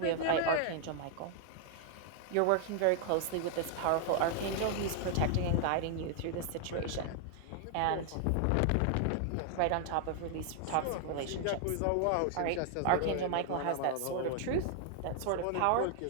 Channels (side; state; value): both; different; correlation 0.00